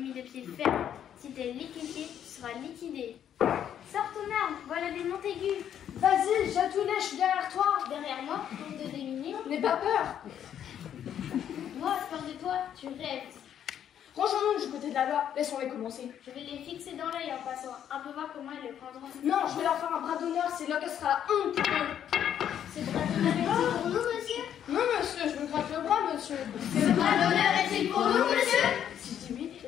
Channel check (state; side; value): quieter; right; 9.7 dB